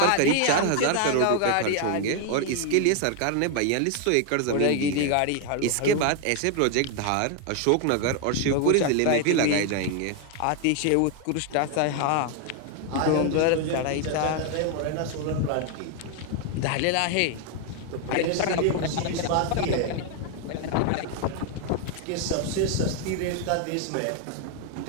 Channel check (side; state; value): both; different; correlation 0.00